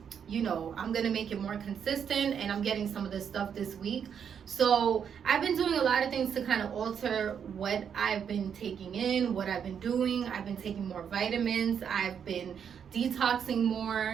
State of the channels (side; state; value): left; quieter; 7.7 dB